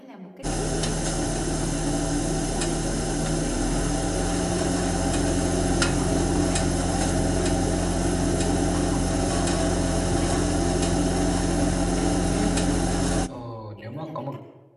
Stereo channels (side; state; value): both; identical; correlation 1.00